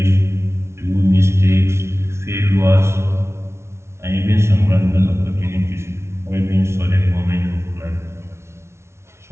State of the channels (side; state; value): left; late; 0.13 ms